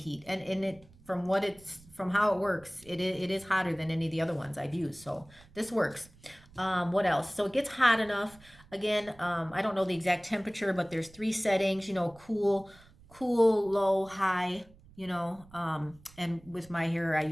And it, from how it works, it is hotter than any of the other ones I've used. So this works. What else? So it gets hot enough. Again, I don't know the exact temperature, but there's 3 settings, you know, cool, low, high, you know, and with my hair, I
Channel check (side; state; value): right; noise; rumble, 25 dB below the sound